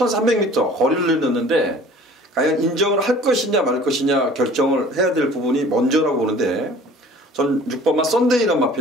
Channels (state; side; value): normal; both; correlation 0.48